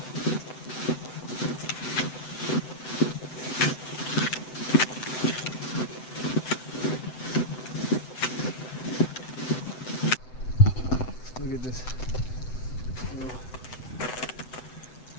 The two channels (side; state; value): right; late; 7.9 ms